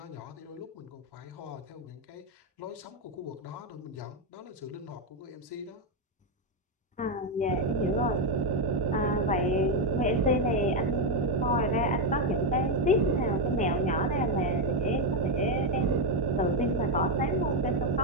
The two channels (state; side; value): normal; both; correlation 0.05